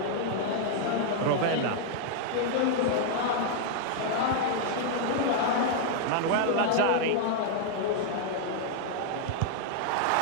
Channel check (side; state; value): both; different; correlation 0.00